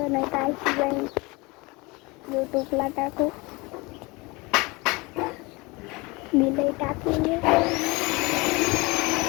नाही तर ऐकू जाईल यूट्यूबला टाकू मी लई टाकलेले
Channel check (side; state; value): right; quieter; 25.2 dB